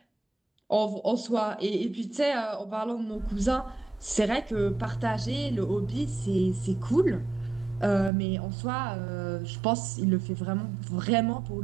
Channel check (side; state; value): left; drops out; at 8.1 s